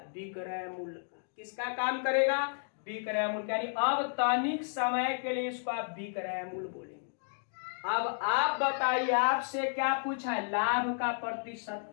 विक्रय मूल्य का। किसका काम करेगा? विक्रय मूल्य। यानी अब तनिक समय के लिए इसको आप विक्रय मूल्य बोलेंगे। अब आप बताइए, आपसे क्या पूछा है? लाभ का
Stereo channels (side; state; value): right; silent; digital silence